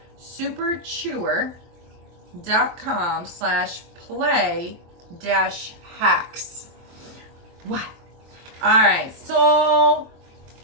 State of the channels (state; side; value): late; left; 23 ms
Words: superchewer.com/play-hacks. What? All right, so